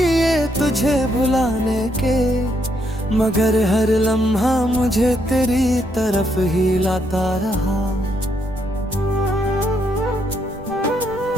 तुझे भुलाने के, मगर हर लम्हा मुझे तेरी तरफ ही लाता रहा।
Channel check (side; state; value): right; noise; rumble, 18 dB below the sound